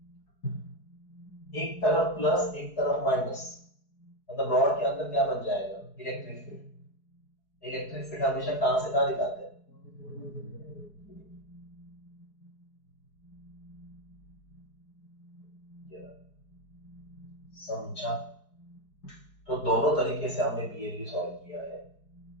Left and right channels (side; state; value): right; late; 4.7 ms